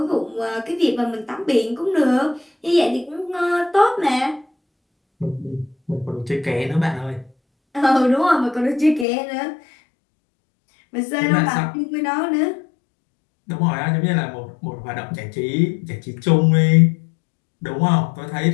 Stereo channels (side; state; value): right; drops out; at 9.1 s